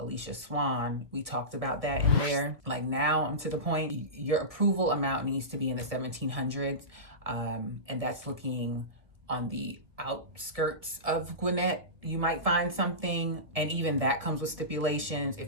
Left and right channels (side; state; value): left; late; 1.7 ms